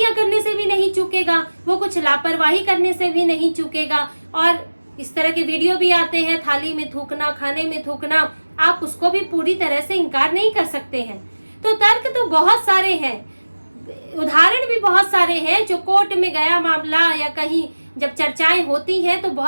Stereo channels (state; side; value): inverted; both; correlation -1.00